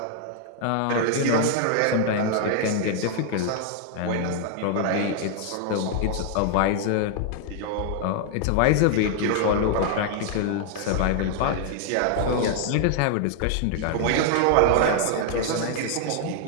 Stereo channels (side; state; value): both; different; correlation 0.00